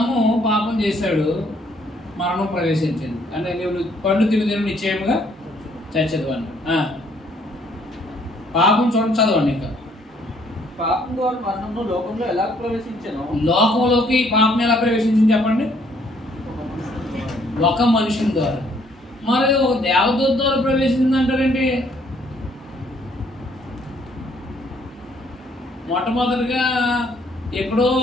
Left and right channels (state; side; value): normal; both; correlation 0.65